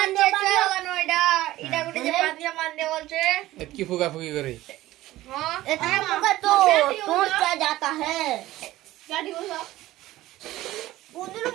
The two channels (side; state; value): left; quieter; 16.1 dB